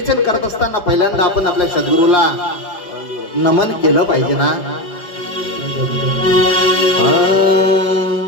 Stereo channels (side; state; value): right; late; 4.8 ms